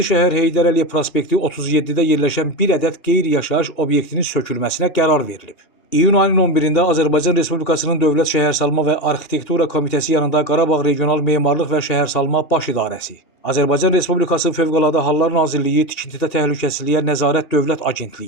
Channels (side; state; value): right; late; 2.8 ms